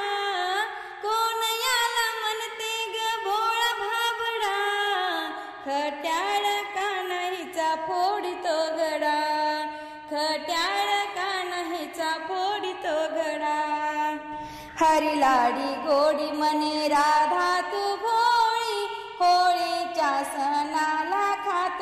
कोण याला म्हणते ग भोळा भाबडा, खट्याळ कान्हीचा फोडितो घडा, खट्याळ कान्हीचा फोडितो घडा। हरी लाडी गोडी म्हणे राधा तू भोळी, होळीच्या सणाला खात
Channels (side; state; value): both; identical; correlation 1.00